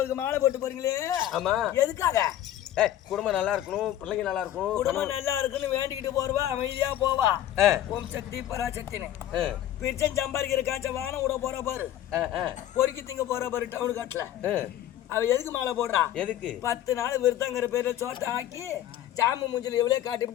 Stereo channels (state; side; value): quieter; right; 12.3 dB